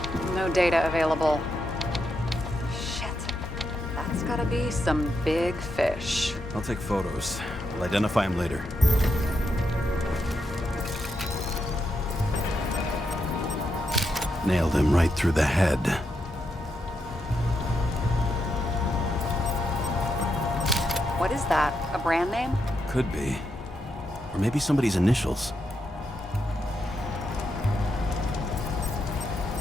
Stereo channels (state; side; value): normal; both; correlation 0.83